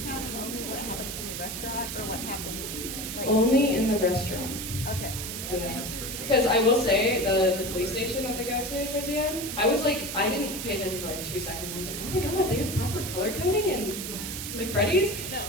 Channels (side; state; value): right; noise; hiss, 6 dB below the sound